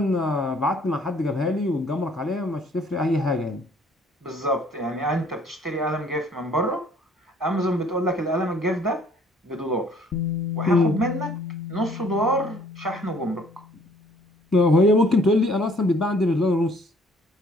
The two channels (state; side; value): normal; both; correlation 0.58